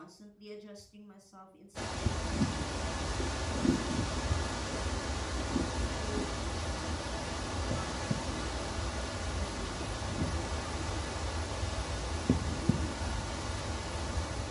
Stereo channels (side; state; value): both; identical; correlation 1.00